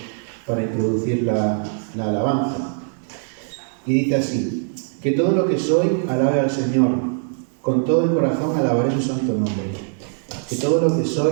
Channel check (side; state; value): left; silent; 62 dB below the other